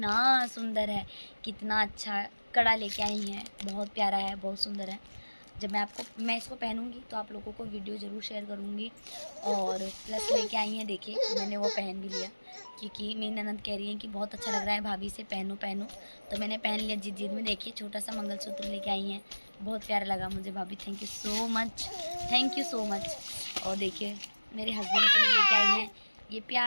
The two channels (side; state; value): both; inverted; correlation -1.00